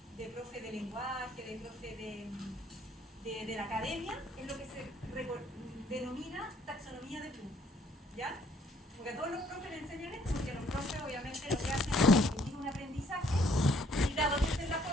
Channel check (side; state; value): both; normal; correlation 0.64